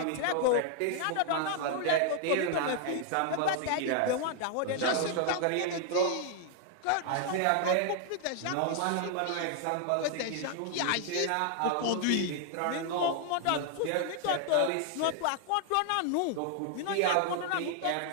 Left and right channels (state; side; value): different; both; correlation 0.00